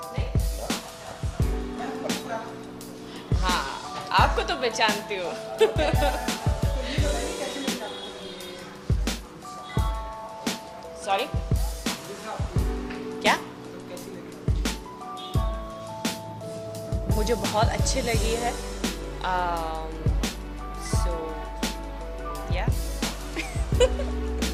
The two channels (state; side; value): identical; both; correlation 1.00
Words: नहीं? हाँ, आपको तो पहचानती हूँ। तो ये बताइए कैसे लगी आपको ये सॉरी, वीज़ा आपको क्या? तो कैसी लगी? मुझे बहुत अच्छी लगी है। So, yeah.